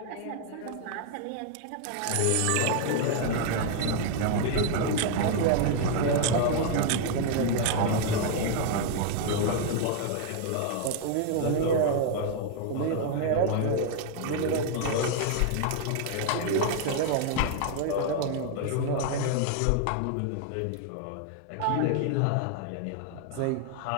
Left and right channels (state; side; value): different; both; correlation 0.00